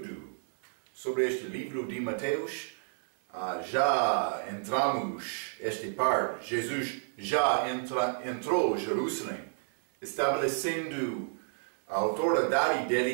sobre este livro de Mateus. Já entramos esta parte. Jesus já entrou a Jerusalém, estabelecendo a autoridade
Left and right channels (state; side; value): silent; left; digital silence